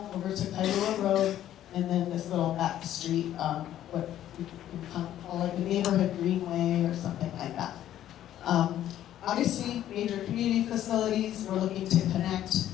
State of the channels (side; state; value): right; quieter; 12.0 dB